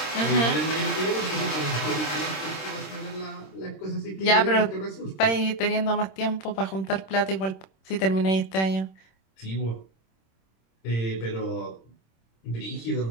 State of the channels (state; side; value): late; right; 26 ms